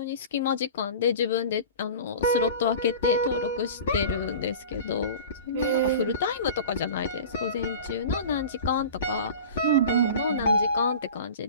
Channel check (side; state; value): both; inverted; correlation -0.36